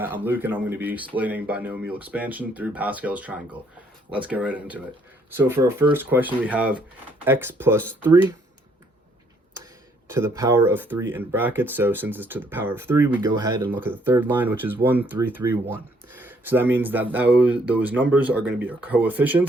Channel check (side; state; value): both; normal; correlation 0.67